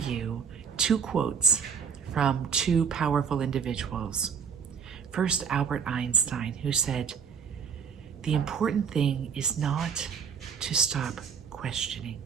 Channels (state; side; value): quieter; left; 6.6 dB